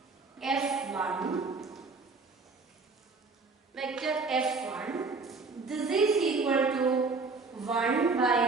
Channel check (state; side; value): quieter; left; 4.1 dB